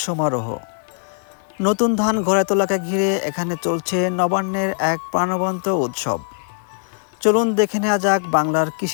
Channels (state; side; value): silent; right; digital silence